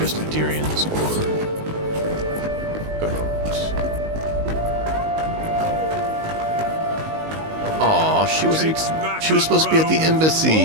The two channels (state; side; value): late; left; 19 ms